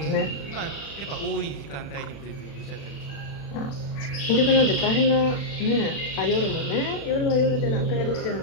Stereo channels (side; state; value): right; late; 36 ms